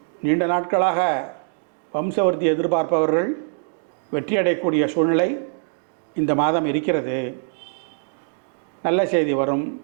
நீண்ட நாட்களாக வம்சவர்த்தி எதிர்பார்ப்பவர்கள் வெற்றியடையக்கூடிய சூழ்நிலை இந்த மாதம் இருக்கிறது. நல்ல செய்தி வரும்.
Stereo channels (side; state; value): left; silent; digital silence